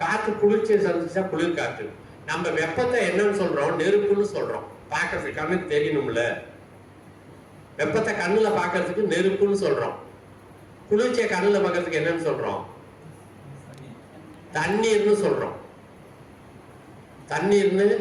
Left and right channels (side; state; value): both; identical; correlation 1.00